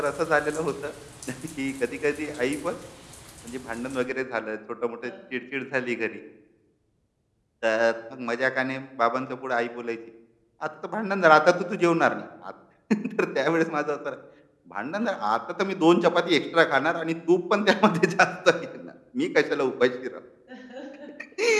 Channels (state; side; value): identical; both; correlation 1.00